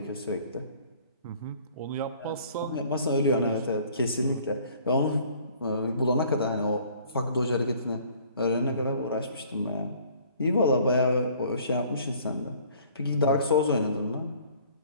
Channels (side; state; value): both; inverted; correlation -0.55